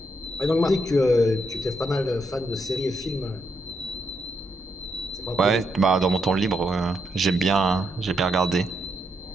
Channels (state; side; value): normal; both; correlation 0.79